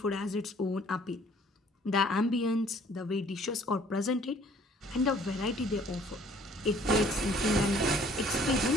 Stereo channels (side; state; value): both; normal; correlation 0.57